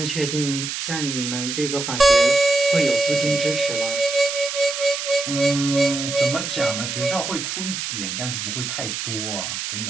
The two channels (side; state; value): right; noise; hiss, 4 dB below the sound